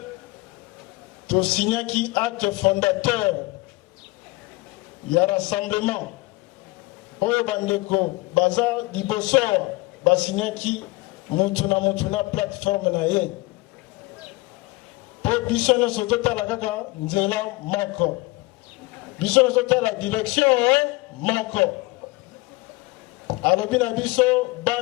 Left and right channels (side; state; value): right; quieter; 22.4 dB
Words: tosignaki acte fondateur ya rassemblement oyo bandeko baza liboso basignaki mutu na plateforme na ye po biso nyonso totala kaka nzela moko biso la direction moko alobi na biso